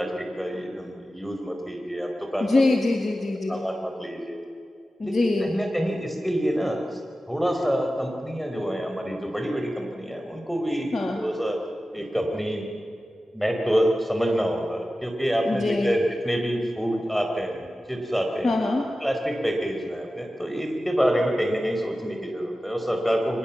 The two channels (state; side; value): normal; both; correlation 0.94